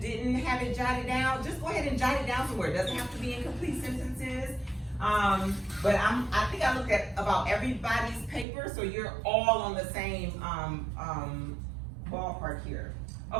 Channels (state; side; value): drops out; left; at 8.5 s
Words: have it jotted down, just go ahead and jot it down somewhere. It doesn't have to be in complete sentences. But I think I looked at about everybody's paper, so you're all on the same ballpark here.